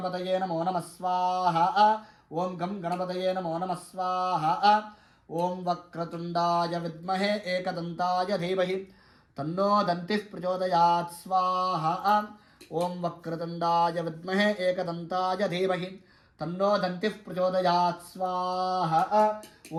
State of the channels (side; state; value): both; identical; correlation 1.00